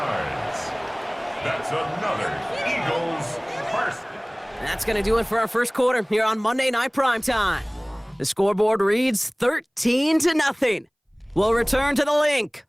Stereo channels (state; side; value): identical; both; correlation 1.00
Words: That's another Eagles first. That's going to do it for our first quarter here on Monday Night Primetime. The scoreboard reads 13-0. We'll return to the link